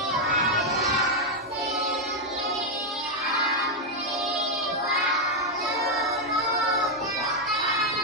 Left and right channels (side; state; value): both; normal; correlation 0.01